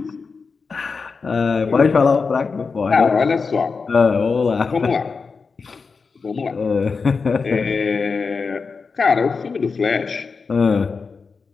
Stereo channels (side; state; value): right; quieter; 4.9 dB